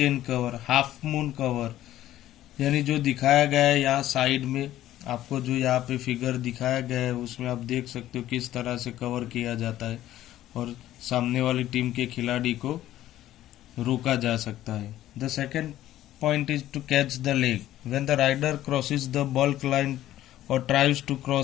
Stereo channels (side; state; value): right; quieter; 13.6 dB